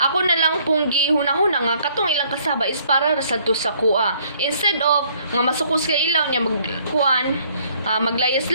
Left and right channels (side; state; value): both; inverted; correlation -0.62